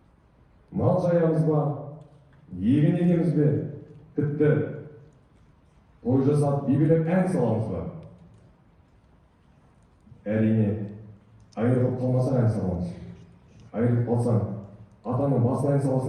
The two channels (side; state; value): both; identical; correlation 1.00